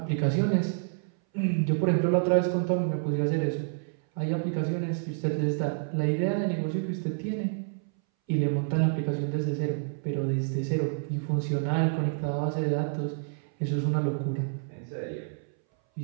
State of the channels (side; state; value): left; silent; 59 dB below the other